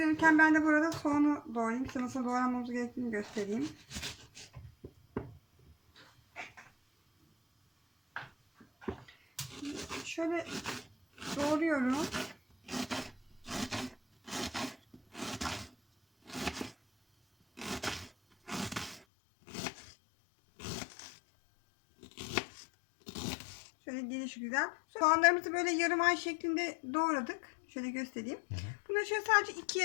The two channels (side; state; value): right; drops out; at 19.0 s